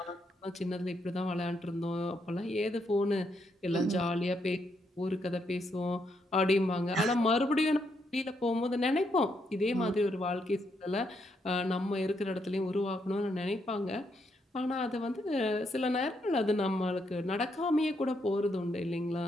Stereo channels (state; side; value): normal; both; correlation 0.77